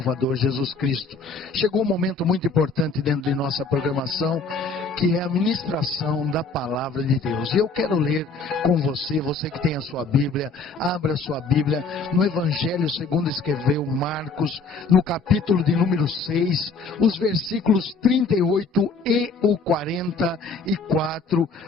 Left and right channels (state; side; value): quieter; right; 4.1 dB